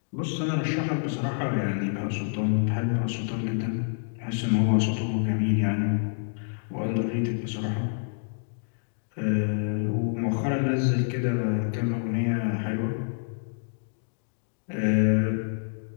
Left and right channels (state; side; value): silent; right; digital silence